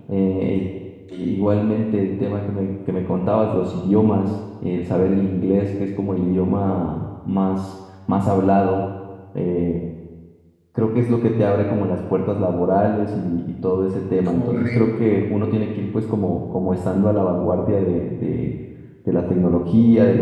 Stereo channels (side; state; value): both; identical; correlation 1.00